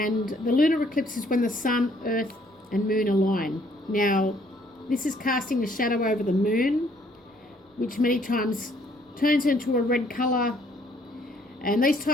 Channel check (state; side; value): normal; both; correlation 0.64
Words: the lunar eclipse is when the sun, earth and moon align. Now, this is casting a shadow over the moon, which many times turns into a red colour, and these